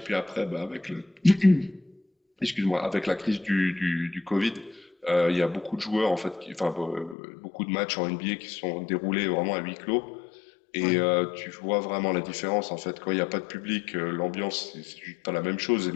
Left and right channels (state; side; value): drops out; right; at 7.2 s